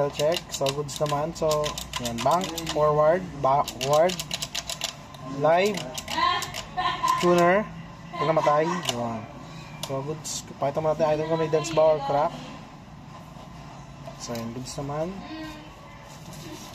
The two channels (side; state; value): both; identical; correlation 1.00